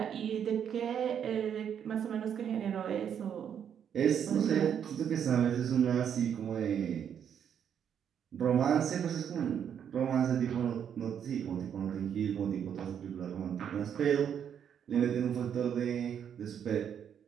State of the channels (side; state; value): left; quieter; 8.5 dB